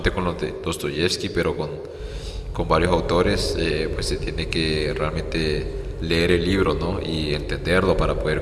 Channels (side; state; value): both; identical; correlation 1.00